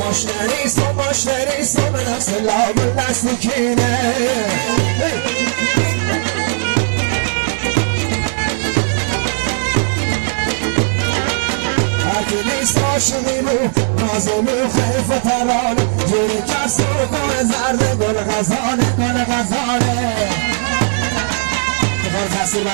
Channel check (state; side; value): silent; left; 68 dB below the other